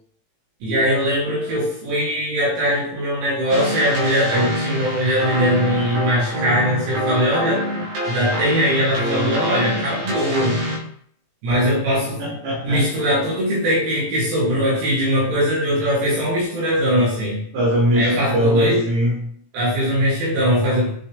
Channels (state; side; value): late; left; 18 ms